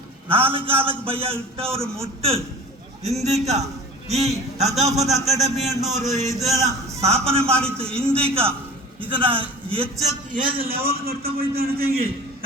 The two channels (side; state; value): both; normal; correlation 0.39